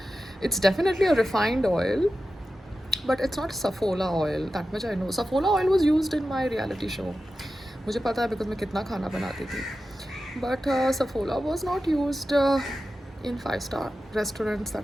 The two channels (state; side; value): normal; both; correlation 0.92